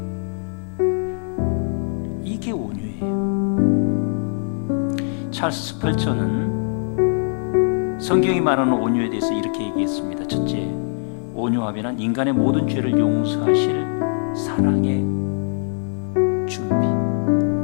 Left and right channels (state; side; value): silent; right; 64 dB below the other